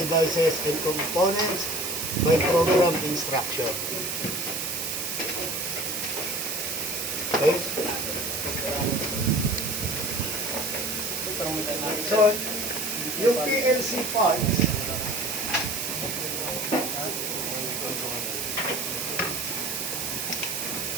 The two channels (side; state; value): right; noise; hiss, 2 dB below the sound